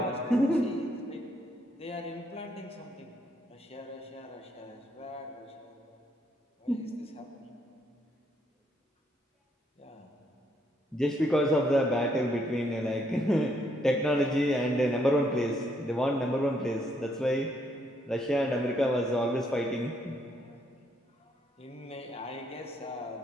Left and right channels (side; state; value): both; normal; correlation 0.72